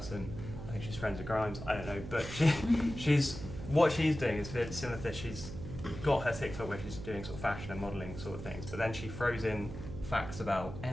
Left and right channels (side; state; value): right; noise; hum, 9 dB below the sound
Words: I think she's friends with Grimes. I don't know, but what she's doing is very similar to this. She's got her TikTok where she's doing sort of fashion and modelling sort of things, but then she throws in facts about